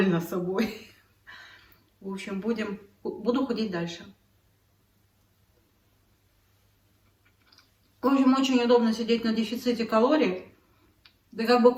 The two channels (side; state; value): both; identical; correlation 1.00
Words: собой. В общем, буду худеть дальше. В общем, очень удобно сидеть на дефиците калорий. Ты как бы